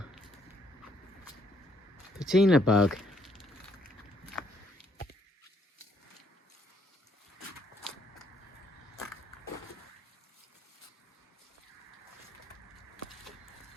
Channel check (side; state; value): both; normal; correlation 0.69